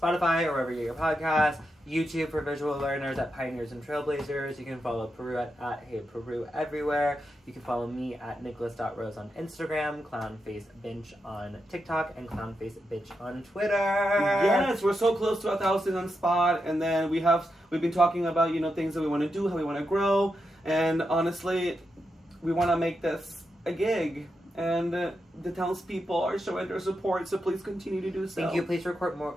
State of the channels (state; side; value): normal; both; correlation 0.86